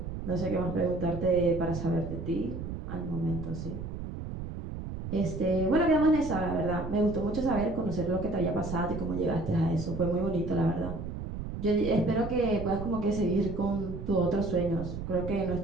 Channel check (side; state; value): right; noise; rumble, 7 dB below the sound